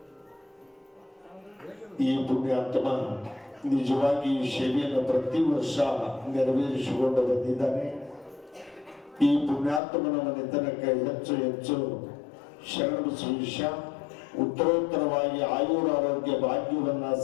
ಈ ಪುಣ್ಯಾತ್ಮ ನಿಜವಾಗಿ ಈ ಸೇವೆಯನ್ನು ಪ್ರತಿ ವರ್ಷ ನೆರವೇರಿಸಿಕೊಂಡು ಬಂದಿದ್ದಾನೆ. ಈ ಪುಣ್ಯಾತ್ಮನ ಮನೆತನಕ್ಕೆ ಹೆಚ್ಚು ಹೆಚ್ಚು ಶರಣಬಸವೇಶ ಉತ್ತರೋತ್ತರವಾಗಿ ಆಯುರಾರೋಗ್ಯ ಭಾಗ್ಯವನ್ನ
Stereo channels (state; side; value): drops out; right; at 9.8 s